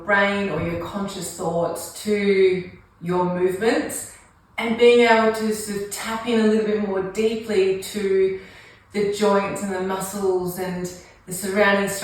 brain or your conscious thoughts to your movements and being able to sort of tap in a little bit more deeply to the joints and the muscles and the surrounding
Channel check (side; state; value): both; identical; correlation 1.00